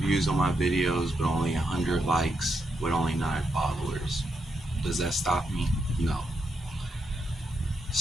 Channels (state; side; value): normal; both; correlation 0.82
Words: views on my videos, but only 100 likes with only 9 followers. Does that stop me? No.